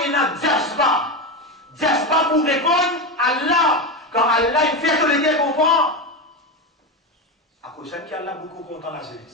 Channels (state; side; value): normal; both; correlation 0.16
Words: il y a un diaspa. Diaspa pour répondre à Allah. Quand Allah il fait que les gars comprennent, à cause de Allah beaucoup content la